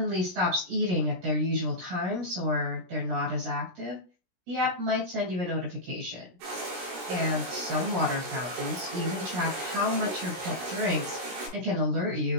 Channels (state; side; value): late; left; 17 ms